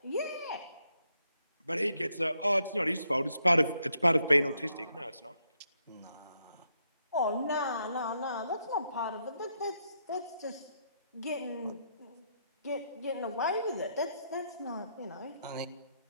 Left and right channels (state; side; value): inverted; both; correlation -0.78